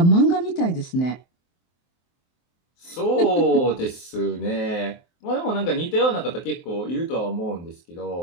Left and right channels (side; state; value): right; late; 23 ms